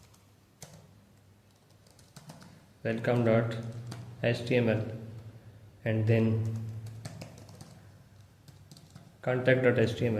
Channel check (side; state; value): both; identical; correlation 1.00